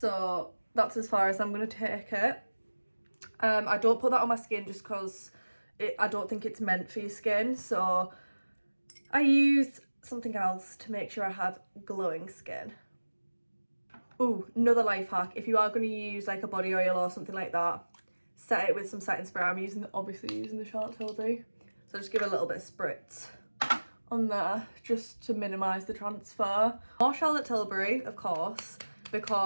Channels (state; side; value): inverted; both; correlation -1.00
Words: that's as far as I'm gonna take it. I don't put that on my skin just because I don't think it's meant for your skin, so I use something else to make sure I have glowing skin. Ooh, another life hack, if you are going to use like a body oil or something like that, set it with some setting spray. I'm obviously using the Charlotte Tilbury, so just give it a little bit of spritz on there just to minimise the transfer. More Charlotte Tilbury, of course,